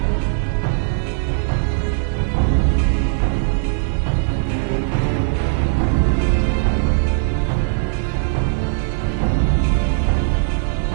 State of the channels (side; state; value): left; silent; digital silence